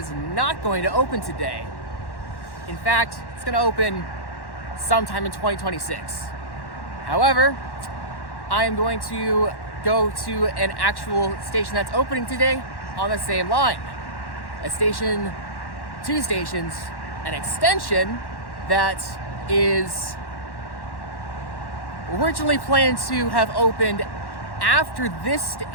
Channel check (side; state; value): right; late; 1.1 ms